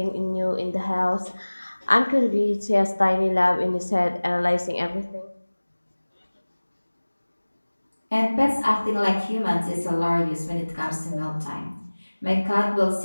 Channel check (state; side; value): inverted; both; correlation -1.00